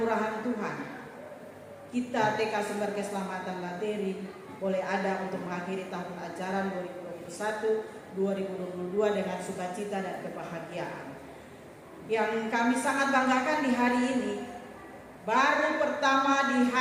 Tuhan, kita TK Sumber Keselamatan Lateri boleh ada untuk mengakhiri tahun ajaran 2021-2022 dengan sukacita dan kebahagiaan. Yang kami sangat banggakan di hari ini, baru pertama di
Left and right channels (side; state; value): both; identical; correlation 1.00